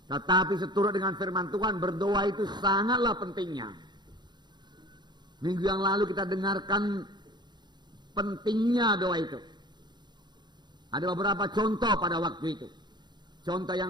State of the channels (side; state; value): left; late; 0.21 ms